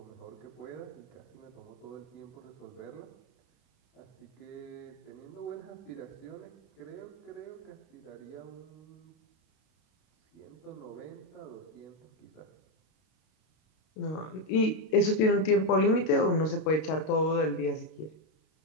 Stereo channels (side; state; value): right; late; 32 ms